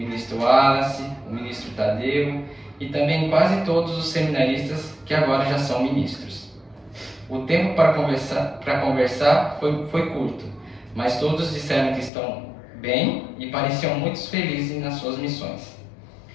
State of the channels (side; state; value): right; drops out; at 12.1 s